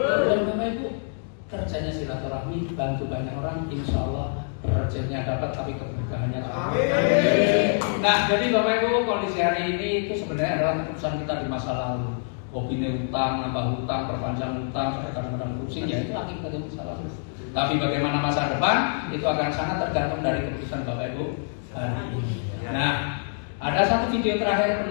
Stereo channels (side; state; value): right; silent; digital silence